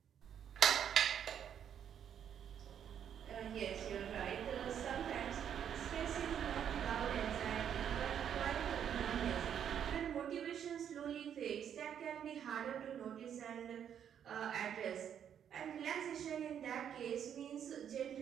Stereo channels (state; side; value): quieter; left; 8.9 dB